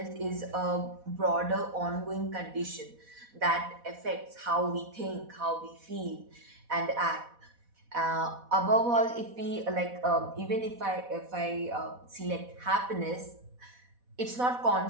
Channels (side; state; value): left; late; 4.1 ms